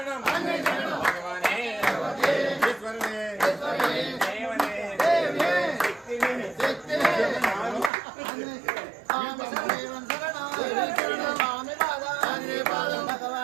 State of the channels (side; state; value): left; drops out; at 7.9 s